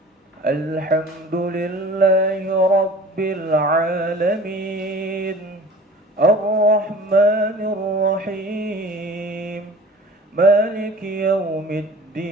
الحمد لله رب العالمين، الرحمن الرحيم، مالك يوم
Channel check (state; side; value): normal; both; correlation 0.43